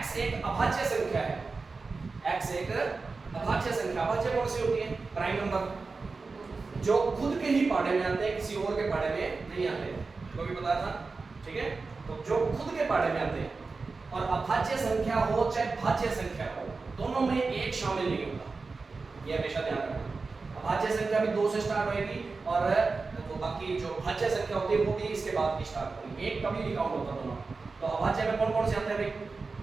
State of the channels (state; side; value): quieter; left; 4.1 dB